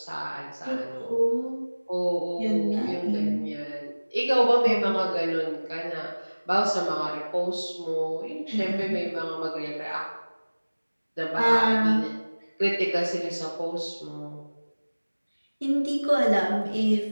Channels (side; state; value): both; inverted; correlation -1.00